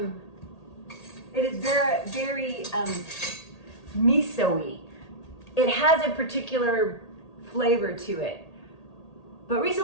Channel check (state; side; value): late; right; 1.8 ms